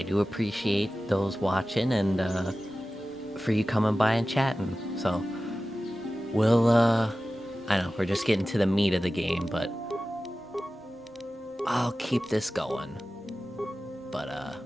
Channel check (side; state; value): both; normal; correlation 0.95